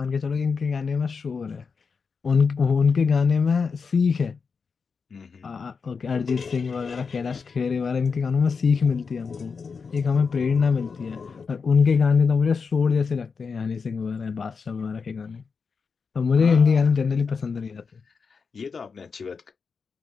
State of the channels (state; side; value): quieter; right; 5.3 dB